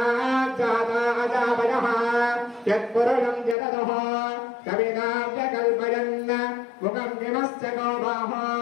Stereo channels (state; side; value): drops out; right; at 3.6 s